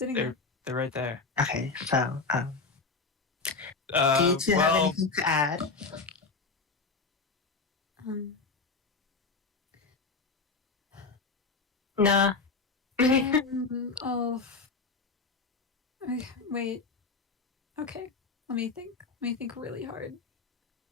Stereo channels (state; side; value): quieter; right; 4.3 dB